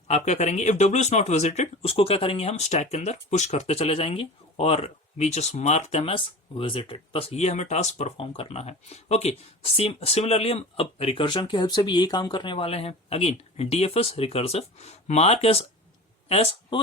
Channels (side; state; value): both; normal; correlation 0.34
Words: आप क्या करेंगे, if W is not visited उसको क्या करेंगे, हम स्टैक के अंदर पुश करते चले जाएंगे और we just mark them as visited. बस ये हमें टास्क परफॉर्म करना है। ओके, सिमिलरली हम अब रिकर्जन की हेल्प से भी यही काम करने वाले हैं। Again DFS recursive, mark as